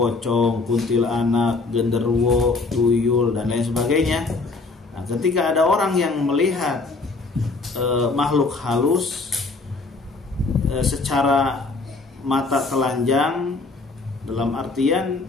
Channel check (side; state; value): right; quieter; 3.8 dB